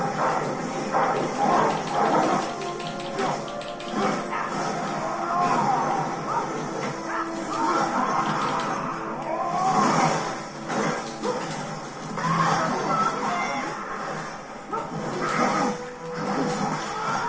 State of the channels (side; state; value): both; identical; correlation 1.00